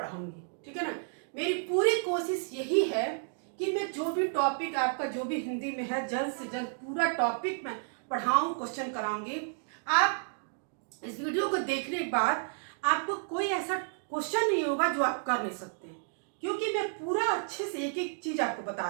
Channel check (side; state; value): left; silent; digital silence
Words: ठीक है ना, मेरी पूरी कोशिश यही है कि मैं जो भी टॉपिक आपका जो भी हिंदी में है जल्द से जल्द पूरा टॉपिक मैं पढ़ाऊं, क्वेश्चन कराऊंगी। आप इस वीडियो को देखने के बाद आपको कोई ऐसा क्वेश्चन नहीं होगा जो आप कर नहीं सकते, क्योंकि मैं पूरा अच्छे से एक एक चीज आपको बता